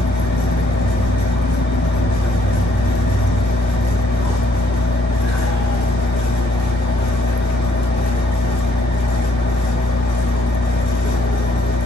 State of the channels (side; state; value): both; normal; correlation 0.68